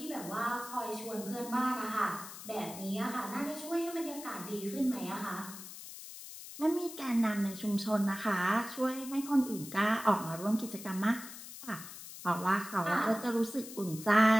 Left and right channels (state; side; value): noise; left; hiss, 13 dB below the sound